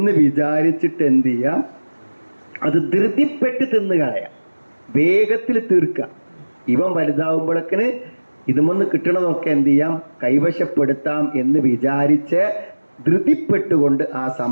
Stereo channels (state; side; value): inverted; both; correlation -1.00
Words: വിചാരിച്ചിട്ട് എന്ത് ചെയ്യാം? അത് ധൃതിപ്പെട്ട് തിന്നു കളയാം, വേഗത്തിൽ തീർക്കുക. ഇവൻ വലുതാവുമ്പോഴേക്കിന് ഇതുമൊന്ന് കിട്ടണതൊക്കെ എന്ത് ചെയ്യാം? കൈവശപ്പെടുത്താം എന്ന് വിചാരിച്ച് ധൃതിപ്പെട്ടുകൊണ്ട് ആ